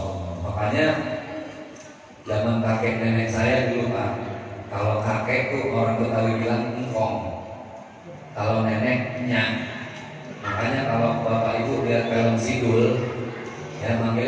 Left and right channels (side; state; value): both; identical; correlation 1.00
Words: Allah. Makanya zaman kakek nenek saya dulu Pak, kalau kakek tuh orang Betawi bilang engkong, kalau nenek nyak. Makanya kalau bapak ibu lihat film Sidul, ya